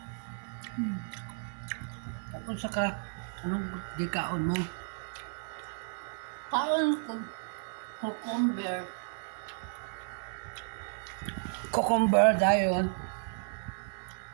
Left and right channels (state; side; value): silent; left; digital silence